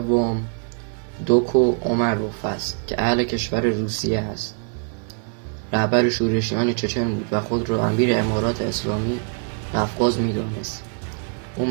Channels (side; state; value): left; quieter; 38.7 dB